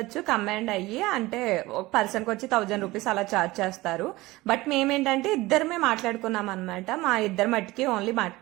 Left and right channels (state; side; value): quieter; left; 19.7 dB